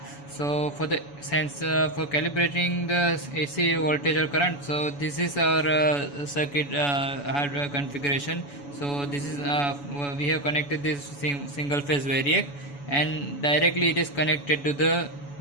So for the for calibrating the AC voltage or current, so this is our circuit hardware configuration. So this is we have connected this single phase variac, and directly it is connected to the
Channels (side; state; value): right; late; 7.0 ms